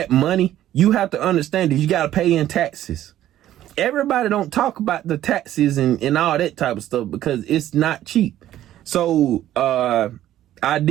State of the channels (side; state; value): left; quieter; 12.8 dB